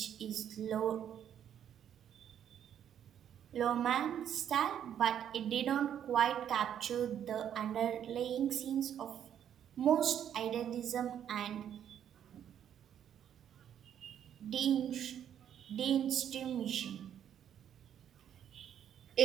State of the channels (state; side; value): quieter; left; 9.6 dB